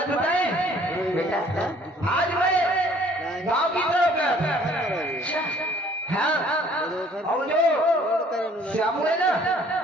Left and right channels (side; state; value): both; normal; correlation 0.57